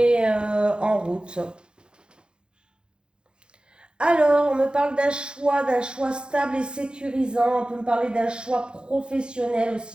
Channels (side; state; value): left; late; 0.050 ms